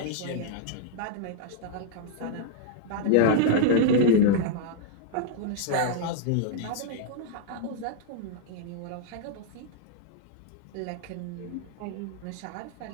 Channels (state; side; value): different; both; correlation -0.01